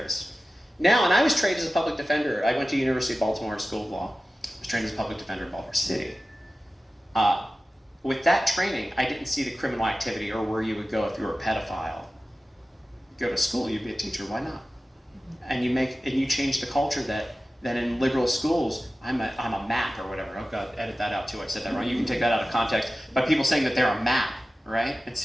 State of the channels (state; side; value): normal; both; correlation 0.95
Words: Now, and I was trained as a public defender. I went to University of Baltimore School of Law. I was trained as a public defender in Baltimore City. With that training, I didn't see the criminal activity or where you would go if you were a pedophile. Go to school, you'd be a teacher, why not? And you change the culture that in liberal schools, I'm a map or whatever. Oh God, edit that out too, I said that wrong. You can take that out of context. But people saying that they're a map, right?